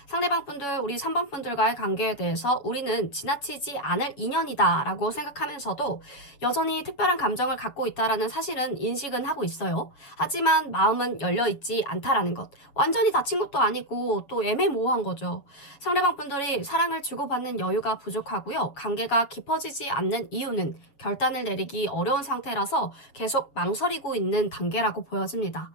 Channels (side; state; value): right; late; 7.1 ms